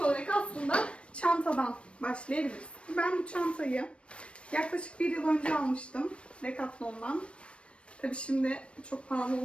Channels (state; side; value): late; right; 0.060 ms